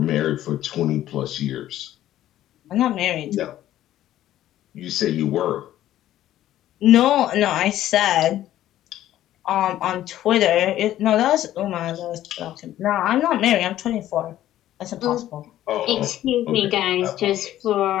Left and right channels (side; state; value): right; quieter; 13.1 dB